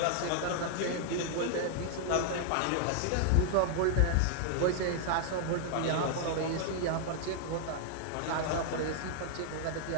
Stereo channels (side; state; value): both; different; correlation 0.00